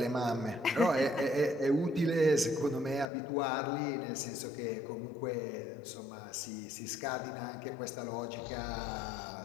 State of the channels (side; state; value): right; drops out; at 3.1 s